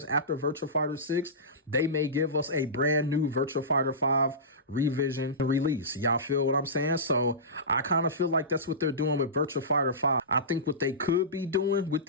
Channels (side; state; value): both; normal; correlation -0.20